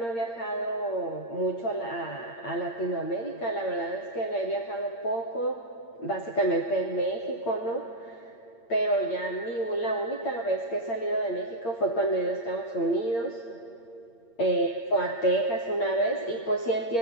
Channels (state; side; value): late; right; 8.7 ms